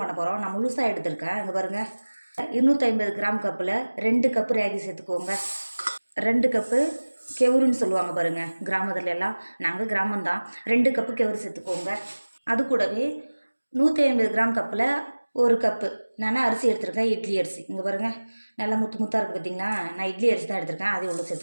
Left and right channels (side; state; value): both; inverted; correlation -1.00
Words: பண்ண போகிறோம். நான் முழுசாக எடுத்திருக்கேன். இங்கே பாருங்கள், 250 கிராம் கப்பில் 2 கப்பு ராகி சேர்த்துக்கோங்க. 2 கப்பு கெவுருன்னு சொல்லுவாங்க பாருங்கள் கிராமத்துல எல்லாம். நாங்கள் கிராமம்தான். 2 கப்பு கெவுரு சேர்த்துக்கோங்க. அது கூடவே 150 கிராம் கப்பில் 1 கப்பு நான் அரிசி எடுத்துருக்கேன், இட்லி அரிசி. இங்கே பாருங்கள், நல்லா முத்து முத்தாக இருக்குது பார்த்தீங்களா. நான் இட்லி அரிசி தான் எடுத்திருக்கேன், அதை உள்ள